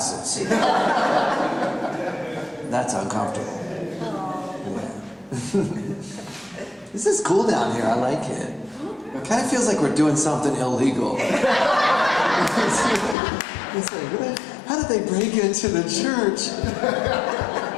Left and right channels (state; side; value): drops out; right; at 13.2 s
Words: That's uncomfortable. Yeah. This is cool down here. I like it. It kind of feels like we're doing something illegal. It's like, how did they break into the church?